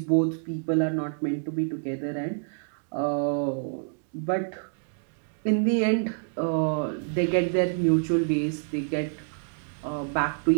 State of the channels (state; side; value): silent; left; digital silence